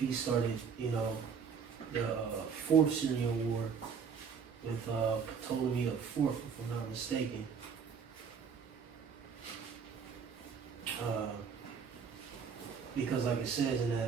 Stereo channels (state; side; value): quieter; left; 6.4 dB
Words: started, you know, the Fourth Syrian War with Ptolemy the Fourth, if I'm not mistaken. Because like it says in